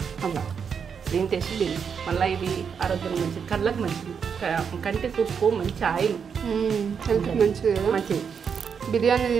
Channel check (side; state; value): left; quieter; 6.7 dB